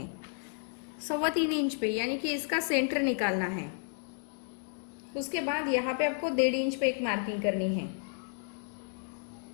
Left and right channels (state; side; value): silent; right; digital silence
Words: 3.25 इंच पे यानी कि इसका सेंटर निकालना है। उसके बाद यहाँ पे आपको 1.5 इंच पे एक मार्किंग करनी है।